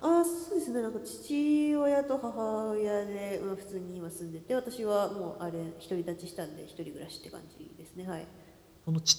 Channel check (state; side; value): identical; both; correlation 1.00